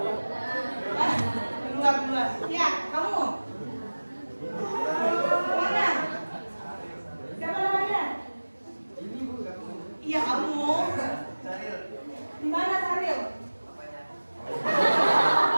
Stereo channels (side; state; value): both; inverted; correlation -1.00